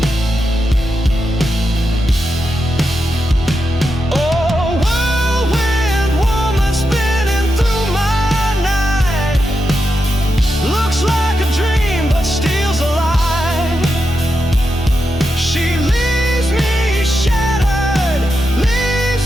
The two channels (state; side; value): normal; both; correlation 0.87